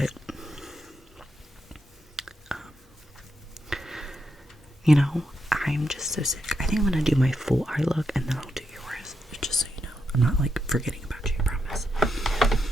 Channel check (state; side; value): normal; both; correlation 0.83